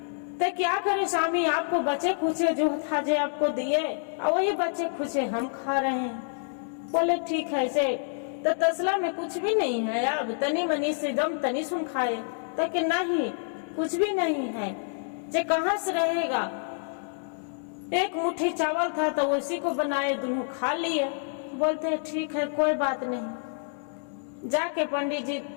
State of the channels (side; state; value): right; silent; digital silence